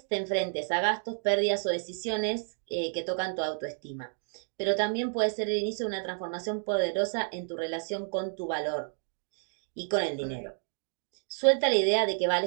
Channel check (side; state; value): left; silent; digital silence